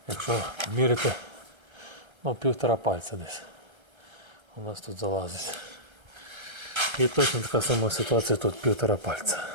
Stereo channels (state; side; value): late; left; 1.3 ms